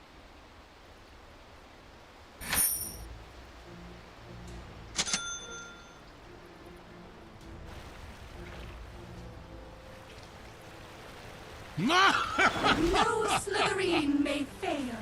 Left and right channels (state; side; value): identical; both; correlation 1.00